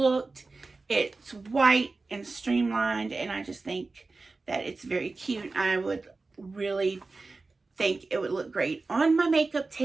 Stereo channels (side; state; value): left; quieter; 3.7 dB